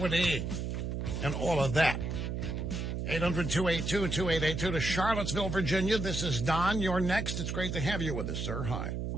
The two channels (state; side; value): noise; right; hum, 3 dB below the sound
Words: and all of that. 800-282-2882 to Charlottesville, Virginia. This is Don. You're next. It's great to have you with us, sir. Hi.